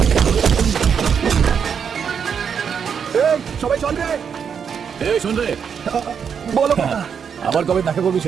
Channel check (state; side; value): quieter; left; 7.1 dB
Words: এই, সবাই চল রে। এই শোন রে, বলো কাকা। আবার কবে দেখা করবি